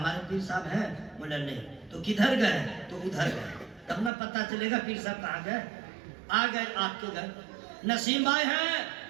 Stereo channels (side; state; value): left; drops out; at 4.1 s